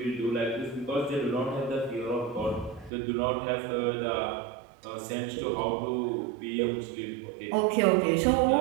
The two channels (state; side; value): drops out; left; at 2.9 s